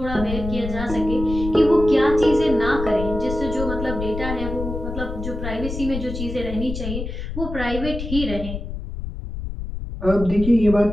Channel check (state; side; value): noise; left; rumble, 7 dB below the sound